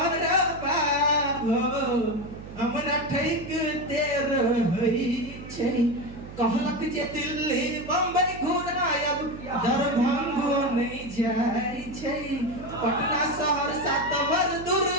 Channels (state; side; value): noise; right; hum, 14 dB below the sound